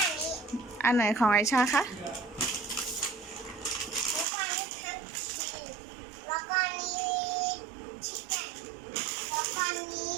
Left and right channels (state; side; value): drops out; left; at 4.2 s